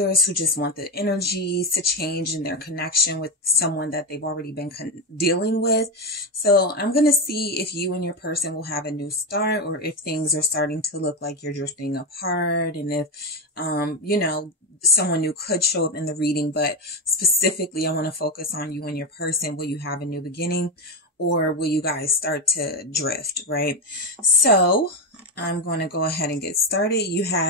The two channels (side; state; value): both; normal; correlation 0.12